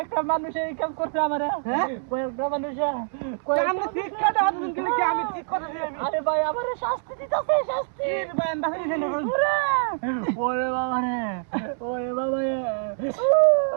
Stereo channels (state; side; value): silent; left; digital silence